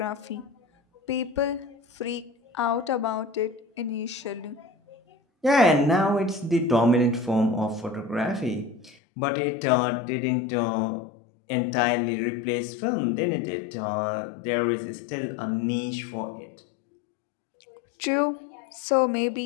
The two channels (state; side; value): drops out; right; at 9.0 s